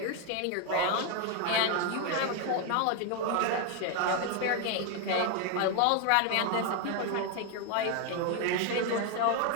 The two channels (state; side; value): different; both; correlation 0.01